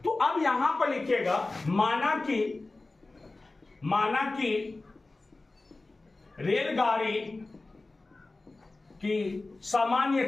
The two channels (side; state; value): right; quieter; 3.2 dB